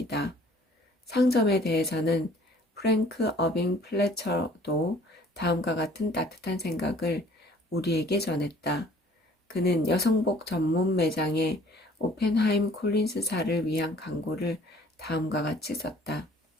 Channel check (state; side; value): normal; both; correlation 0.54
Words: 상점에 대해서는 프랭크 어빙 플래처도 다음과 같은 따뜻한 생각을 우리에게 전했다. 그는 여성복 전문 매장의 오펜하임 콜린스사를 위한 광고를 다음과 같이 썼다.